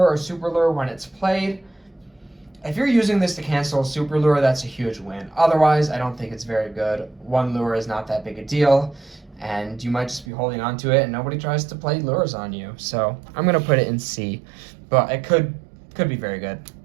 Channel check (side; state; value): left; drops out; at 10.2 s